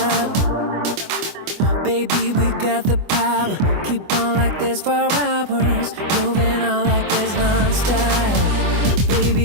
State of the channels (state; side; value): late; left; 24 ms